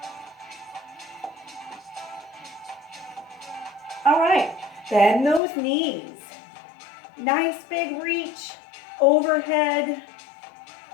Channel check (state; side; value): drops out; right; at 5.4 s